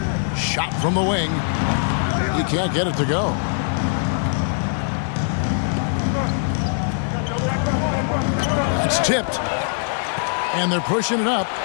Shot from the wing. He can't get it to go. It's tipped. And they're pushing it up.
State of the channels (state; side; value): silent; right; digital silence